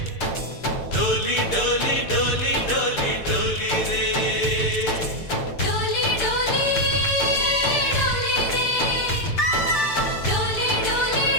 डोली डोली डोली डोली डोली रे डोली डोली डोली रे डोली डोली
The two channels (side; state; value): right; late; 6.7 ms